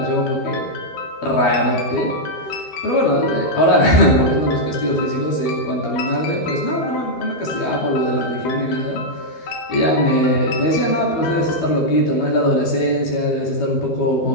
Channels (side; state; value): right; late; 12 ms